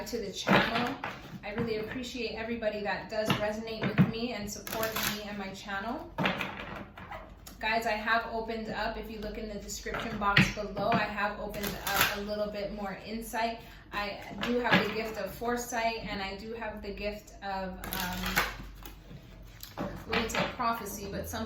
to the channel. I really appreciate everybody that does resonate with me and support me and my channel. Guys, I have opened up, if you look in the description box below, I have opened up a little bit more insight. I do have the gift of foresight, and I do have the gift of, I wouldn't say prophecy, but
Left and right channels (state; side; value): identical; both; correlation 1.00